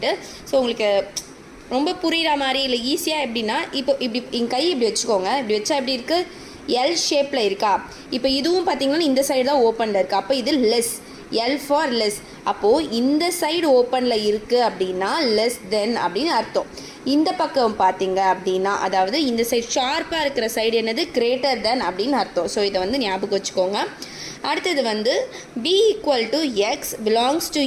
ஸோ உங்களுக்கு ரொம்ப புரிகிற மாதிரி இல்லை ஈஸியாக எப்படின்னா, இப்போ இப்படி என் கை இப்படி வச்சுக்கோங்க. இப்படி வச்சா எப்படி இருக்குது? எல் ஷேப்பில் இருக்கா? இப்போ இதுவும் பார்த்திங்கன்னா இந்த சைடு தான் ஓப்பனில் இருக்குது. அப்போ இது லெஸ், எல் ஃபார் லெஸ். அப்போது இந்த சைடு ஓப்பனில் இருக்குது அப்படின்னா லெஸ் தென் அப்படின்னு அர்த்தம். இந்த பக்கம் பார்த்தீங்க அப்படின்னா, அதாவது இந்த சைடு ஷார்ப்பாக இருக்கிற சைடு என்னது? கிரேட்டர் தென் அப்படின்னு அர்த்தம். ஸோ இதை வந்து ஞாபகம் வச்சுக்கோங்க. அடுத்தது வந்து b equal to X belongs to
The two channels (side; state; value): both; identical; correlation 1.00